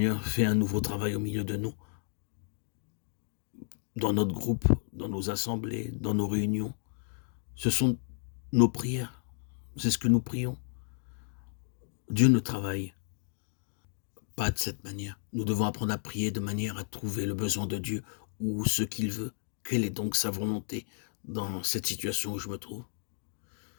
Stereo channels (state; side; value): silent; right; digital silence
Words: fais un nouveau travail au milieu de nous, dans notre groupe, dans nos assemblées, dans nos réunions. Ce sont nos prières, c'est ce que nous prions. Dieu ne travaille pas de cette manière. Nous devons apprendre à prier de manière à trouver le besoin de Dieu ou ce qu'il veut. Quelle est donc sa volonté dans cette situation où je me trouve?